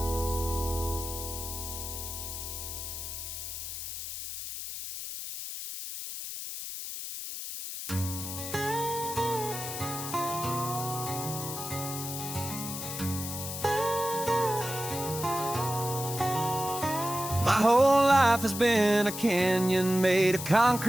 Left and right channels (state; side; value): noise; left; hiss, 7 dB below the sound